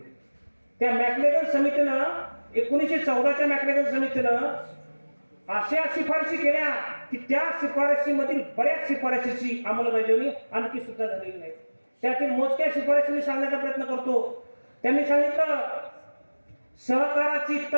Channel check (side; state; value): both; inverted; correlation -1.00